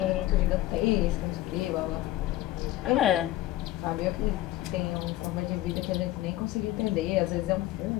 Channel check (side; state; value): right; quieter; 15.7 dB